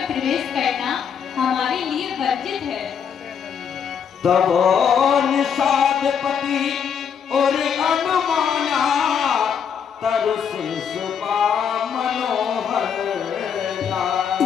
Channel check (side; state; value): right; quieter; 7.5 dB